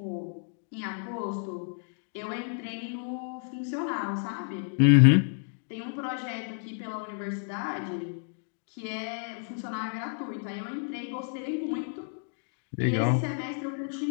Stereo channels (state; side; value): silent; right; 58 dB below the other